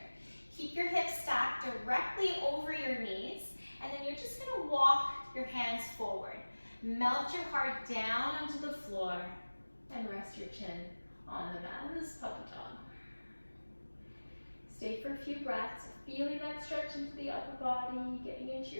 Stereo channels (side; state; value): both; inverted; correlation -1.00